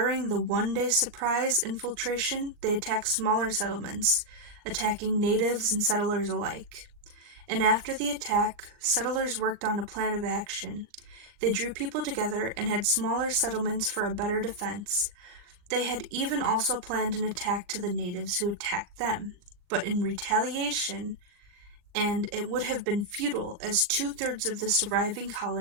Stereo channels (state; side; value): late; left; 40 ms